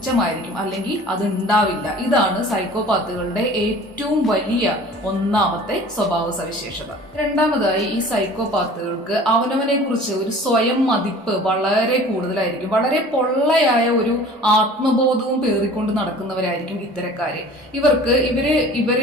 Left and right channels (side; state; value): both; normal; correlation 0.45